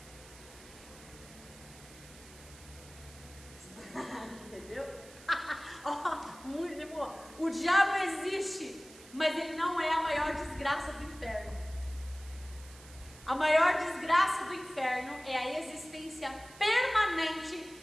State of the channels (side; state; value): right; noise; hiss, 20 dB below the sound